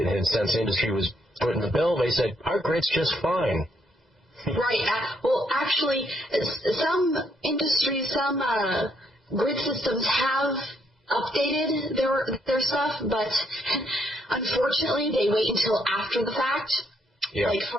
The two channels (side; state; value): both; normal; correlation 0.73